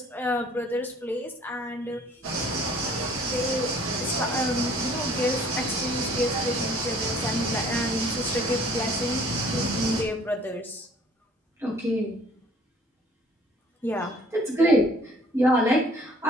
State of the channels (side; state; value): both; normal; correlation 0.55